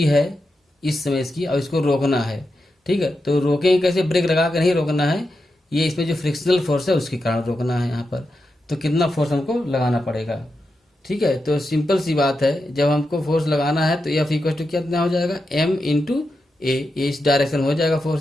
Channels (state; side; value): normal; both; correlation 0.88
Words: है इस समय इसकी, और इसको रोकना है। ठीक है, तो रोकेंगे कैसे, ब्रेक लगा कर नहीं रोकना है, ये इसमें जो फ्रिक्शनल फोर्स है उसके कारण रोकना है यहाँ पर। तो कितना फोर्स हमको लगाना पड़ेगा। ठीक है, तो सिंपल सी बात है, जब हमको फोर्स लगाना है तो F इक्वल टू कितना हो जाएगा, m इंटू ए, इस डायरेक्शन हो जाएगा